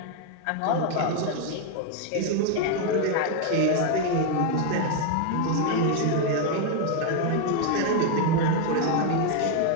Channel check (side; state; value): both; different; correlation 0.01